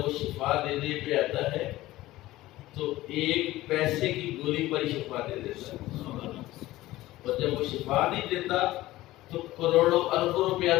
شفا دینے پہ آتا ہے تو 1 پیسے کی گولی پر ہی شفا دے دیتا ہے. اور جب وہ شفا نہیں دیتا تو کروڑوں اربوں روپیہ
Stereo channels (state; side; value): quieter; right; 16.9 dB